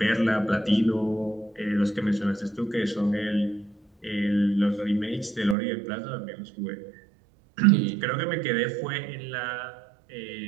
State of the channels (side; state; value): left; drops out; at 5.6 s